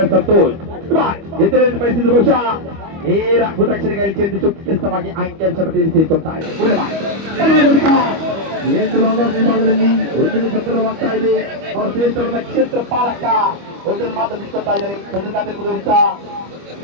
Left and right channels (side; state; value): left; late; 25 ms